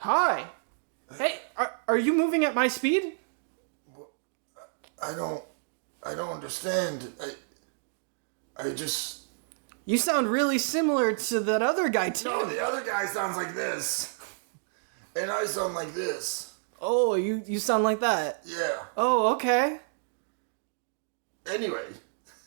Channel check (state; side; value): silent; left; digital silence